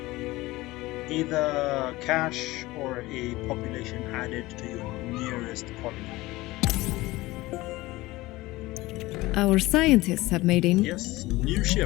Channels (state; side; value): quieter; right; 19.4 dB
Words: either cash or a population added to your nearest colony. Our scientists have made a Yes, new